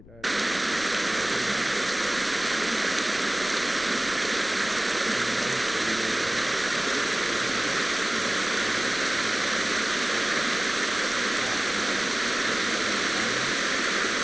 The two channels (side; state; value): left; noise; rumble, 21 dB below the sound